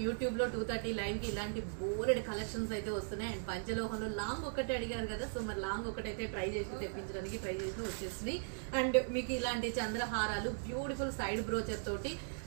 యూట్యూబ్ లో 2:30 లైవ్ కి ఇలాంటి బోర్డ్ కలెక్షన్స్ అయితే వస్తున్నాయి. అండ్ పంచలోహంలో లాంగ్ ఒకటే అడిగారు కదా, సో మరి లాంగ్ ఒకటైతే ట్రై చేసి తెప్పించడానికి ట్రై చేసి వచ్చేసినాయి. అండ్ మీకు ఇలాంటి చంద్రహారాలు బ్యూటిఫుల్ సైడ్ బ్రోచర్ తోటి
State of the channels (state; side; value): silent; left; 52 dB below the other